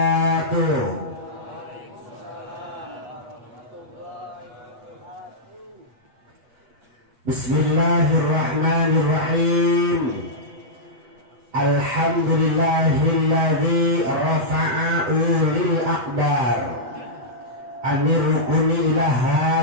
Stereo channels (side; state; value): left; late; 8.3 ms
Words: Bismillahirrahmanirrahim. Alhamdulillahilladzi rafa'a ulil aqdar anir rukuni ila